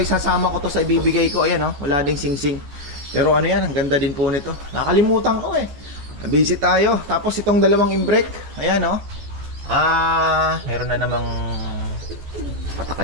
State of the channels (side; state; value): left; late; 14 ms